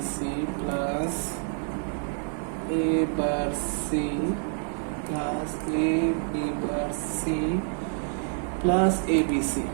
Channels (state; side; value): silent; left; 60 dB below the other